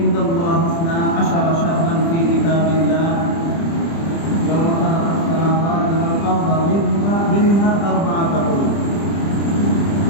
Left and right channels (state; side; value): late; right; 30 ms